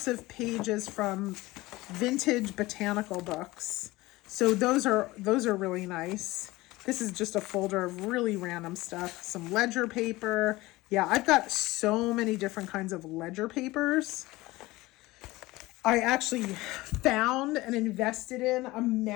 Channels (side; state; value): right; quieter; 19.8 dB